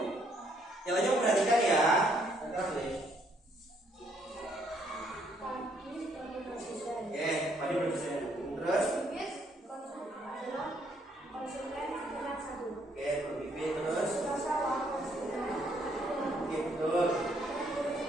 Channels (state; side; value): normal; both; correlation 0.69